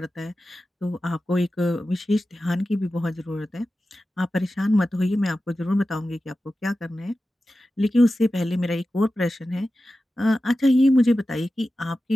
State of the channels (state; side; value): normal; both; correlation 0.94